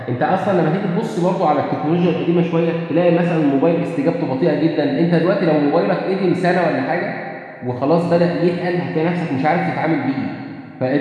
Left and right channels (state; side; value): identical; both; correlation 1.00